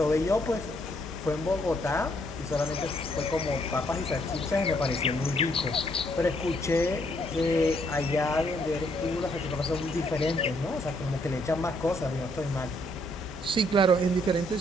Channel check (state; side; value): normal; both; correlation 0.70